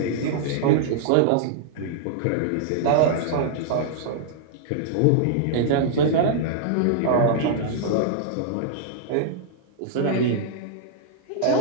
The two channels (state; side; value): different; both; correlation -0.01